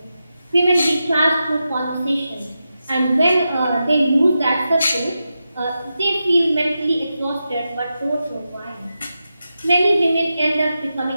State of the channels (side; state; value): both; inverted; correlation -0.90